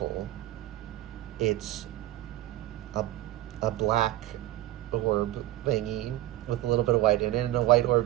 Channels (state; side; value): quieter; left; 15.1 dB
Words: It's a black orb thingy with a little bit of white in it, and a white